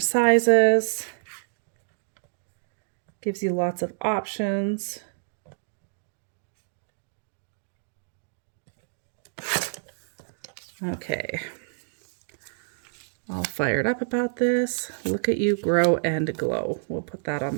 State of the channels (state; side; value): silent; left; digital silence